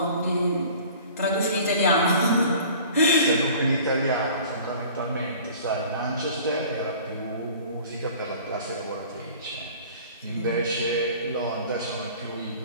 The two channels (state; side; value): inverted; both; correlation -0.46